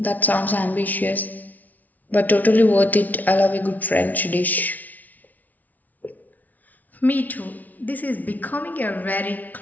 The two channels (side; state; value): right; late; 0.077 ms